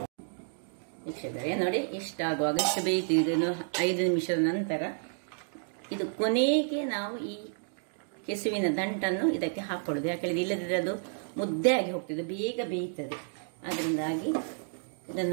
ವೀಕ್ಷಕರೇ ನೋಡಿ, ಇಷ್ಟಾಗುವಾಗ ಇಷ್ಟು ಬೇಯ್ತಿದ್ದು 5 ನಿಮಿಷದ ನಂತರ ಇದು ಕೊನೆಗೆ ನಾವು ಈ ಕೆಸುವಿನ ದಂಟನ್ನು ಇದಕ್ಕೆ ಹಾಕೊಳ್ಳೋದು. ಯಾಕಂದ್ರೆ ಇಲ್ಲದಿದ್ರೆ ಅದು ಮುದ್ದೆ ಆಗಿ ಹೋಗ್ತದೆ, ಬೇಗ ಬೇಯ್ತದೆ. ಅದರಿಂದಾಗಿ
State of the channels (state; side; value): silent; left; digital silence